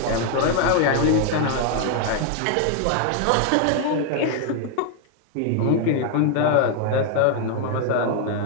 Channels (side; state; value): both; different; correlation 0.00